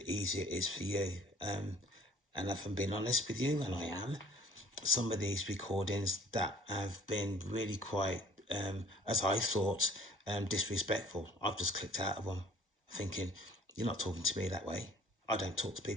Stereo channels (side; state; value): both; normal; correlation 0.53